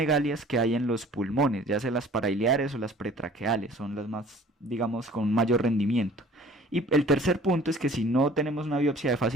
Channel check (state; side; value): normal; both; correlation 0.50